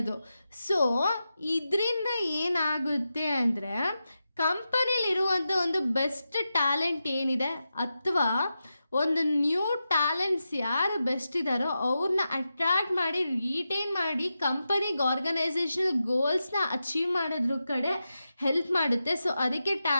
ಸೊ ಇದರಿಂದ ಏನಾಗುತ್ತೆ ಅಂದರೆ ಕಂಪನಿಲಿರುವಂಥ ಒಂದು ಬೆಸ್ಟ್ ಟ್ಯಾಲೆಂಟ್ ಏನಿದೆ ಅಥವಾ ಒಂದು ನ್ಯೂ ಟ್ಯಾಲೆಂಟ್ಸ್ ಯಾರು ಬೆಸ್ಟ್ ಇದ್ದಾರೋ ಅವ್ರನ್ನ ಅಟ್ರ್ಯಾಕ್ಟ್ ಮಾಡಿ ರಿಟೈನ್ ಮಾಡಿ ಕಂಪನಿಗೆ ಆರ್ಗನೈಸೇಷನಲ್ ಗೋಲ್ಸ್ನ ಅಚೀವ್ ಮಾಡೋದ್ರ ಕಡೆ ಹೆಲ್ಪ್ ಮಾಡುತ್ತೆ. ಸೊ ಅದಕ್ಕೆ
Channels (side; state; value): both; inverted; correlation -0.90